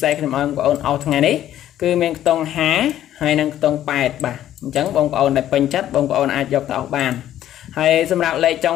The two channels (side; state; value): right; quieter; 12.1 dB